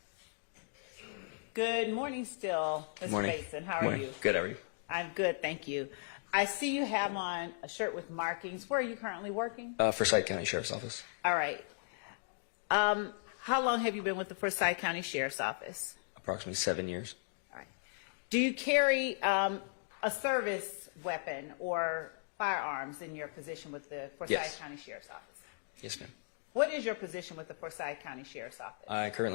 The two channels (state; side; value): silent; right; digital silence